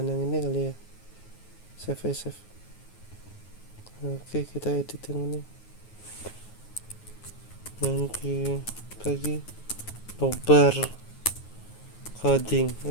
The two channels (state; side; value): late; right; 9.4 ms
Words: ini kali ya, save. Oke, kita edit yang ini, nanti lagi nobar coding,